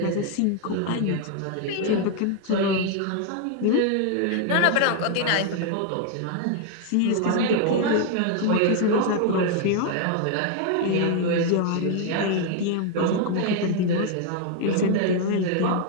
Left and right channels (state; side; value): different; both; correlation 0.00